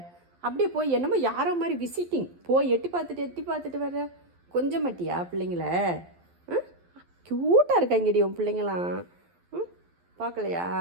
அப்படியே போய் என்னமோ யாரோ மாதிரி விசிட்டிங் போய் எட்டி பார்த்துட்டு வர கொஞ்சம் மாட்டியா பிள்ளைங்கள? க்யூட்டாக இருக்காங்கடி உன் பிள்ளைங்களாம்.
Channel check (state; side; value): late; left; 12 ms